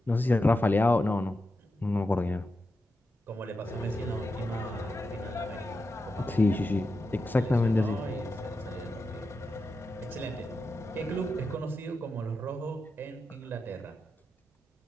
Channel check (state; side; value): normal; both; correlation 0.89